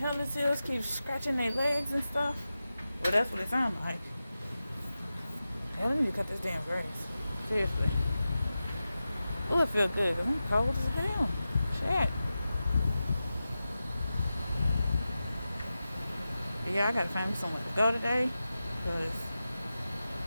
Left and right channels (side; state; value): both; inverted; correlation -0.93